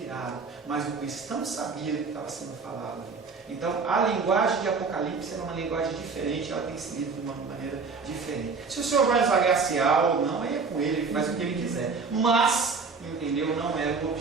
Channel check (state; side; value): quieter; left; 4.7 dB